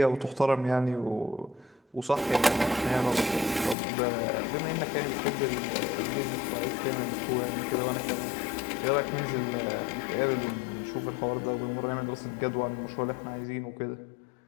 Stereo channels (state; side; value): drops out; right; at 3.8 s